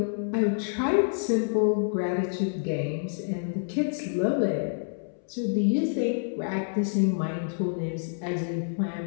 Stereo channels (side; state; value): right; silent; 60 dB below the other